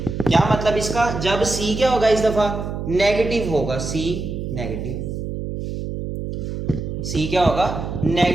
क्या मतलब इसका, जब c क्या होगा, इस दफा नेगेटिव होगा, c नेगेटिव। सी क्या होगा,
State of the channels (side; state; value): right; noise; hum, 5 dB below the sound